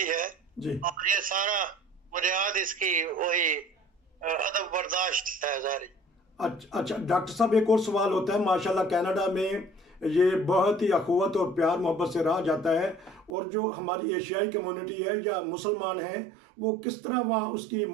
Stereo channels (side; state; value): left; drops out; at 13.3 s